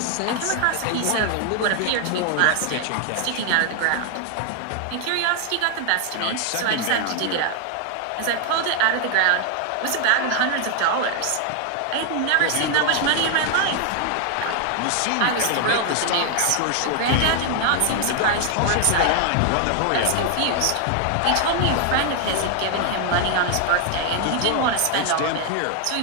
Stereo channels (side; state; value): both; different; correlation 0.00